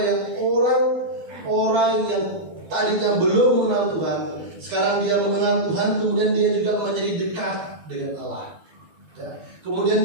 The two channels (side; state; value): left; late; 12 ms